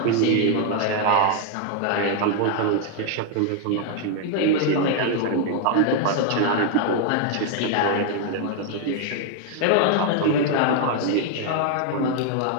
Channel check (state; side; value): different; both; correlation 0.00